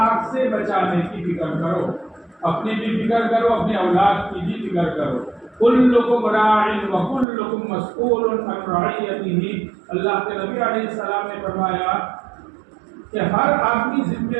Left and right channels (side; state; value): left; drops out; at 7.2 s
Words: سے بچانے کی فکر کرو، اپنی بھی فکر کرو، اپنے اولاد کی بھی فکر کرو. کلکم راع وکلکم مسئول عن رعیتہ. اللہ کے نبی علیہ السلام نے فرمایا کہ ہر آدمی